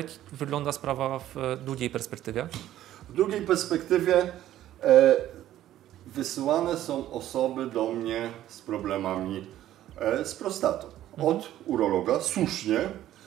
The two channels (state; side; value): quieter; left; 13.0 dB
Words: wygląda sprawa w długiej perspektywie? W długiej perspektywie wysyłane są osoby do mnie z problemami z prostatą. Od urologa, słusznie.